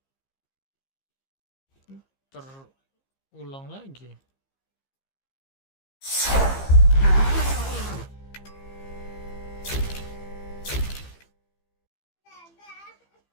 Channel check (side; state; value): right; late; 15 ms